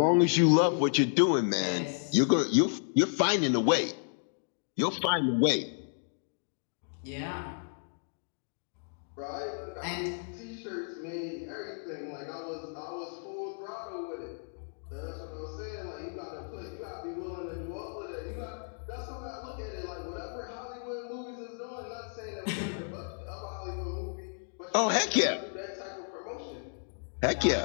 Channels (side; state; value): right; silent; digital silence